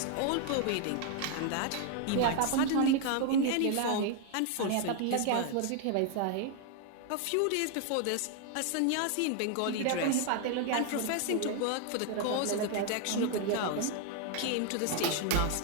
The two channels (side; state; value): both; different; correlation 0.00